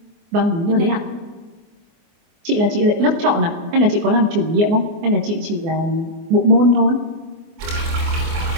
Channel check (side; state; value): left; late; 24 ms